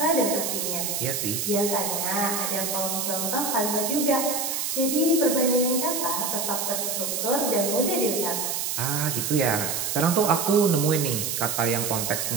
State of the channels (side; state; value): right; noise; hiss, 1 dB below the sound